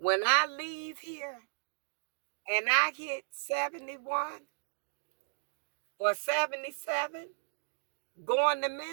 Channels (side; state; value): left; silent; digital silence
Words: I leave here and I hit 71 or 77, going to